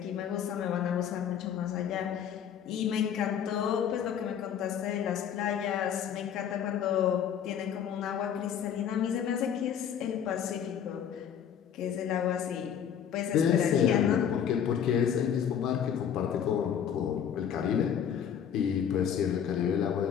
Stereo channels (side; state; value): right; quieter; 8.6 dB